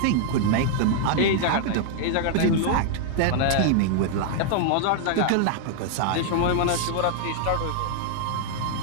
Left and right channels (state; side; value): different; both; correlation -0.01